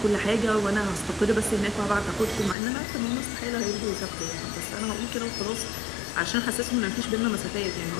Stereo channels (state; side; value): drops out; right; at 2.6 s